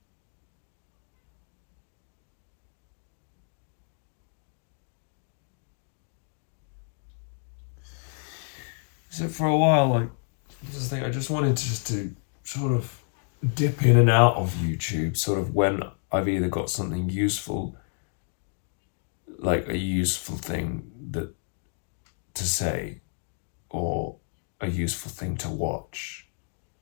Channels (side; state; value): right; silent; 58 dB below the other